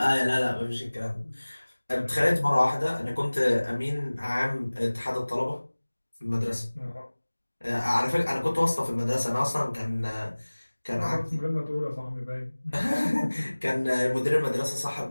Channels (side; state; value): both; inverted; correlation -1.00